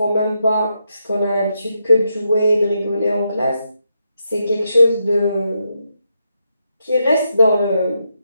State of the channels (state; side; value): inverted; both; correlation -0.82